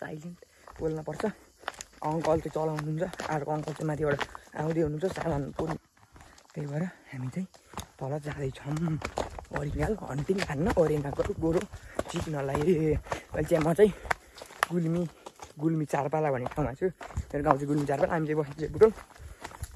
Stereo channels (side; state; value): both; identical; correlation 1.00